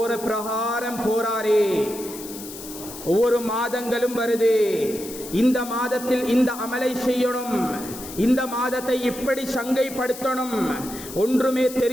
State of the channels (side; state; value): left; noise; hiss, 13 dB below the sound